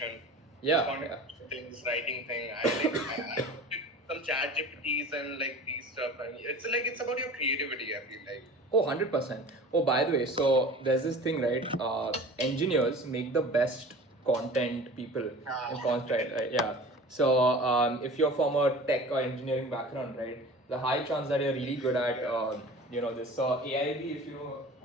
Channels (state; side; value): normal; both; correlation 0.40